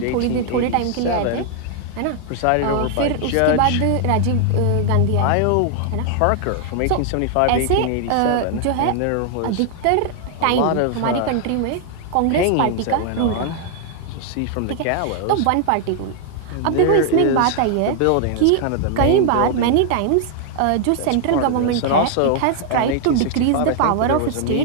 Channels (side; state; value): both; different; correlation 0.00